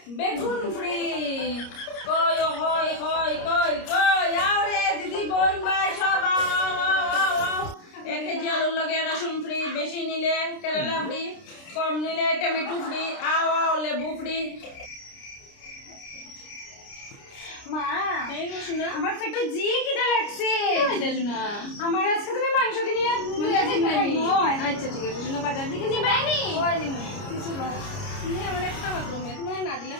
বেগুন ফ্রি। কই কই কই কই কই আও রে দিদি বোন ভাই সব আও আও আও আও আও। 1 কেজি আলুর লগে রসুন ফ্রি, বেশি নিলে কেরালা ফ্রি, কম নিলে টমেটো ফ্রি, আও আও লেবু ফ্রি। মা এই রসুনা আমার তো একটু জি খিদে লাগছে। রসুনা আমার আজকে তুমি মাংস কিনে নিয়ে যাই। আচ্ছা ঠিক আছে রসুনা বাজার দিকে নিবাইনি কিছু না তুমি আমার একটা মাত্র মেয়ে তুমি না দিলে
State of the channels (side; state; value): right; late; 29 ms